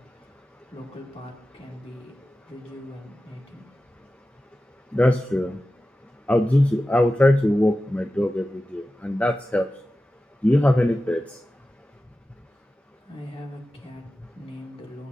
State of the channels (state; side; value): normal; both; correlation 0.94